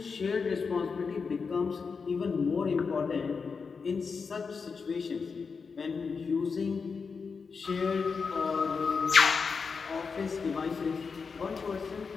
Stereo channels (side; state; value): right; quieter; 5.2 dB